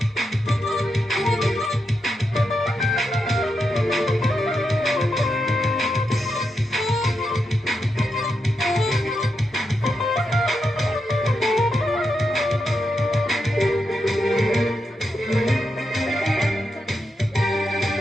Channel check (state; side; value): normal; both; correlation 0.85